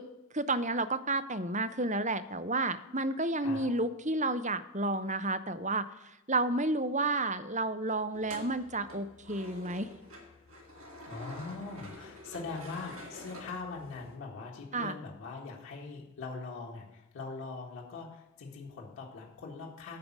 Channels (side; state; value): both; normal; correlation 0.03